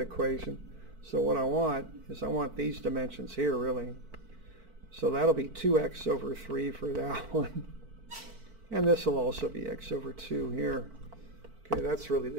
So what I want these dimensions here really. So that'll be 2x over 3 for that one. And this will also be x over 2 here. Okay, that's really the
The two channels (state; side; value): late; left; 4.5 ms